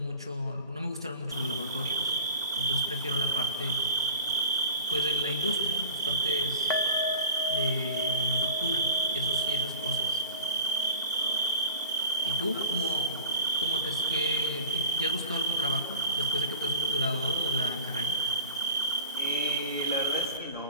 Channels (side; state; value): both; inverted; correlation -0.36